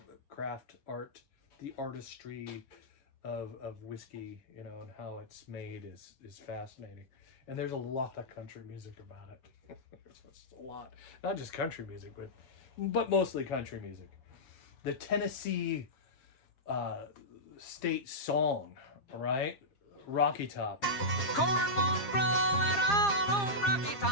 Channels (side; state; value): right; late; 7.4 ms